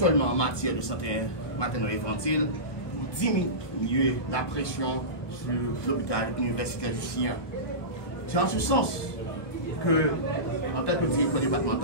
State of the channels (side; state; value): right; late; 1.3 ms